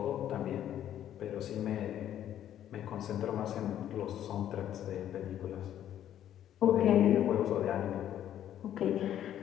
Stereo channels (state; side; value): quieter; right; 11.1 dB